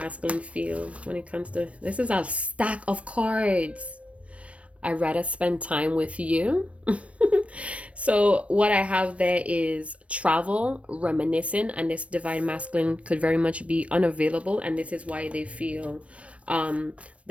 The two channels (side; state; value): left; late; 0.063 ms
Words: feel when it comes to... This is a stack of cards. I'd rather spend time with you. So what I have there is travel, reminiscing, and this Divine Masculine could very much be unavailable, and this is why they feel